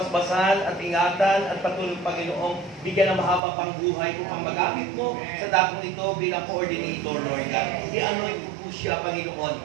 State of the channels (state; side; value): drops out; left; at 3.4 s